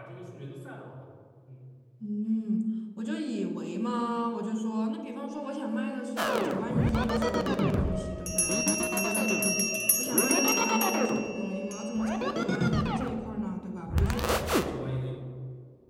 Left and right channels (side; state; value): both; identical; correlation 1.00